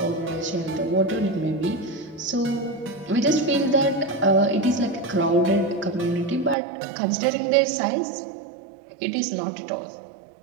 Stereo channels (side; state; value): left; drops out; at 6.6 s